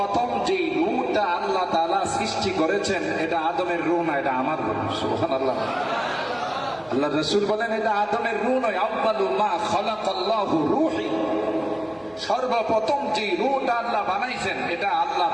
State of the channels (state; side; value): noise; right; hum, 30 dB below the sound